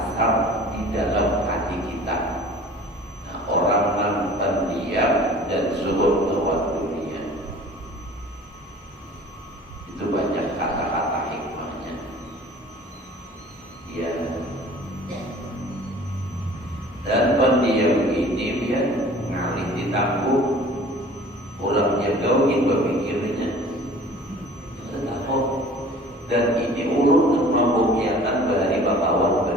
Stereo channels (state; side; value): normal; both; correlation 0.46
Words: di dalam hati kita. Nah, orang yang pendiam dan zuhud lewat dunia itu banyak kata-kata hikmahnya. Ya. Dan pendiam ini dia ngalih ditangguh, orangnya gaungin berpikirnya. Kenapa? Dan ini ulun membuktikan dari bapawan